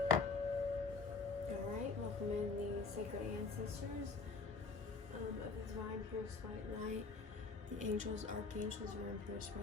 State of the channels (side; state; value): right; quieter; 4.4 dB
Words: Alright, welcome in the sacred ancestors of the divine purest white light, the angels, archangels, are in purest